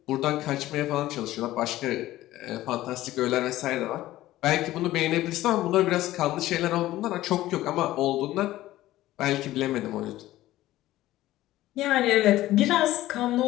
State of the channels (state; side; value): quieter; right; 15.5 dB